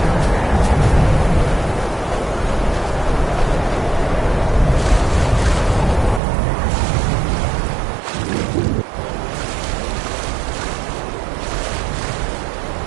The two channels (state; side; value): drops out; left; at 6.2 s